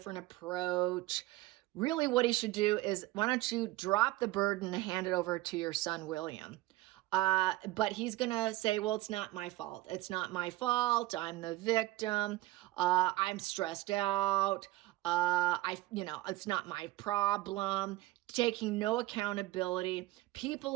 approach. Really, what he should do is, why don't you drop the burden and hand it over to your son, William? But he's going to say, well, it's not my fault. It's not my fault. I'm the victim. I'm stressed out. It's not my problem. Taking no accountability. People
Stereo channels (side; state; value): left; quieter; 18.0 dB